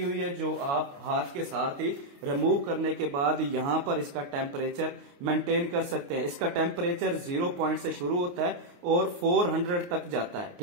हुई है जो आप हाथ के साथ ही रिमूव करने के बाद यहाँ पर इसका टेम्परेचर मेंटेन कर सकते हैं। इसका टेम्परेचर 0 पॉइंट से शुरू होता है और 400 तक जाता है।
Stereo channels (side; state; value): left; late; 28 ms